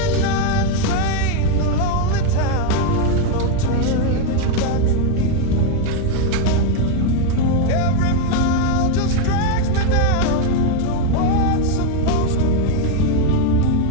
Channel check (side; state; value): both; different; correlation 0.01